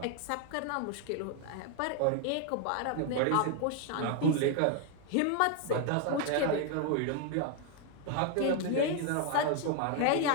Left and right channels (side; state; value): both; different; correlation 0.00